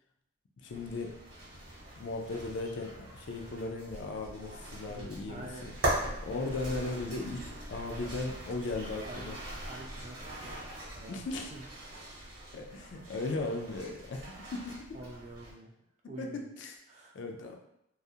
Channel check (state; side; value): normal; both; correlation 0.26